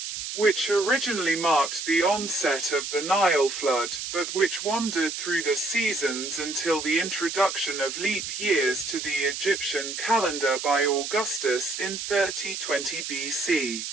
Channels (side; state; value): right; noise; hiss, 6 dB below the sound